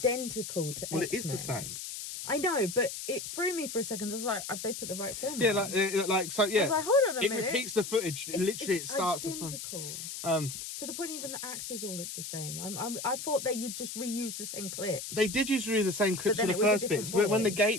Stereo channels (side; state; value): left; noise; hiss, 7 dB below the sound